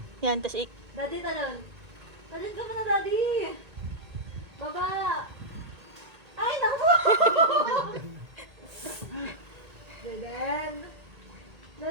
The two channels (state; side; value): late; left; 1.8 ms